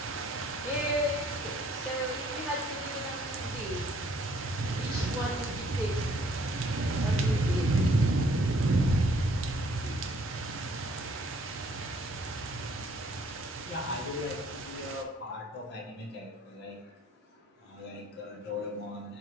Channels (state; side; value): normal; both; correlation 0.62